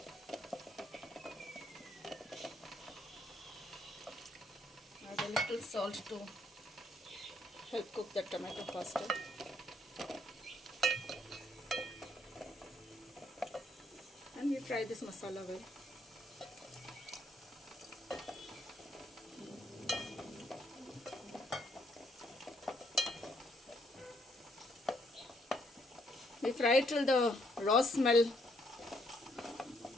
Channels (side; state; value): both; normal; correlation 0.71